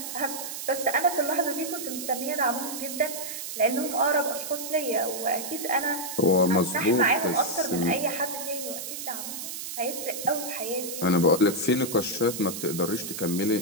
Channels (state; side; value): noise; right; hiss, 7 dB below the sound